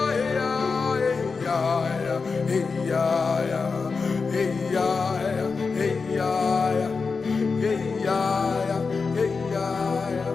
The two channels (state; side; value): quieter; right; 4.7 dB